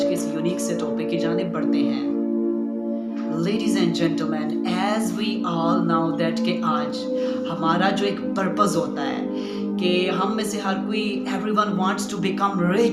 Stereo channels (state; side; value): identical; both; correlation 1.00